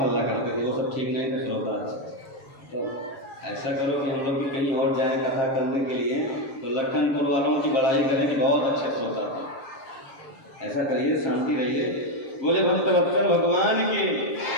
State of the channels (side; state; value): right; late; 7.5 ms